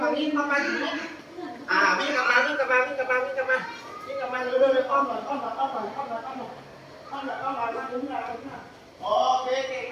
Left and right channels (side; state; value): both; identical; correlation 1.00